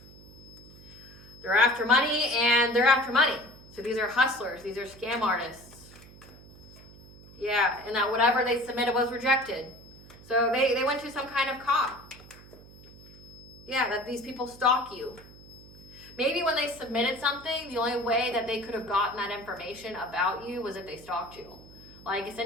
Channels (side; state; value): right; noise; hum, 20 dB below the sound